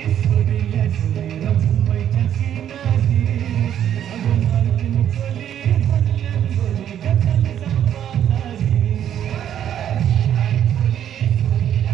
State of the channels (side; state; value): left; quieter; 10.1 dB